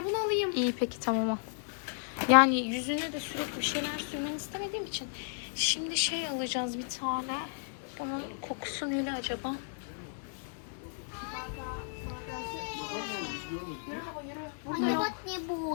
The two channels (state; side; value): silent; right; digital silence